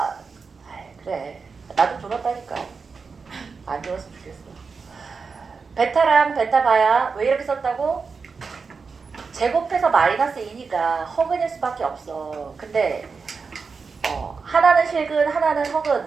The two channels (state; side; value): quieter; left; 5.0 dB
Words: 그래. 나도 졸았다니까. 안 졸았으면 좋겠어. 베타랑 베타바야 왜 이렇게 썼다고? 제곱해서 마이너스 2니까 허근일 수밖에 없어. 근데 하나는 실근 하나는